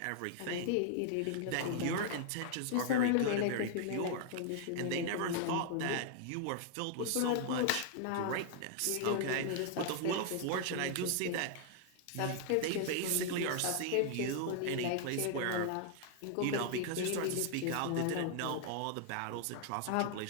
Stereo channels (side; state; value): both; different; correlation 0.00